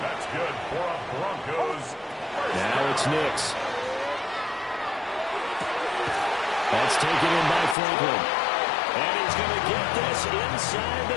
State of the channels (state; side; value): drops out; right; at 7.8 s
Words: That's good for a Broncos. Now it's Nix. That's taken in by Franklin. And he's going to get this inside